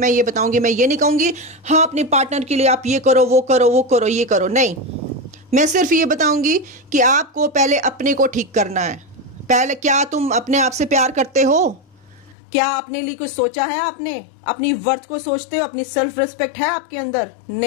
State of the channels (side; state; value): right; drops out; at 12.4 s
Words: ये बताऊंगी, मैं ये नहीं कहूँगी हाँ अपने पार्टनर के लिए आप ये करो, वो करो, वो करो, ये करो, नहीं। मैं सिर्फ ये बताऊंगी कि आपको पहले अपने को ठीक करना है। पहले क्या तुम अपने आप से प्यार करते हो? क्या अपने लिए कुछ सोचा है आपने? अपनी वर्थ को सोचते हो? अपनी सेल्फ रिस्पेक्ट है आपके अंदर?